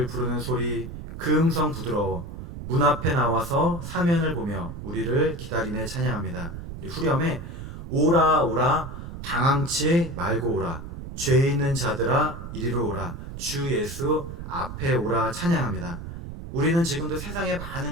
부르는 소리 그 음성 부드러워 문 앞에 나와서 사면을 보며 우리를 기다리네 찬양합니다. 우리 후렴에 오라 오라 방황치 말고 오라 죄 있는 자들아 이리로 오라 주 예수 앞에 오라 찬양합니다. 우리는 지금도 세상의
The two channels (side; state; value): right; noise; rumble, 10 dB below the sound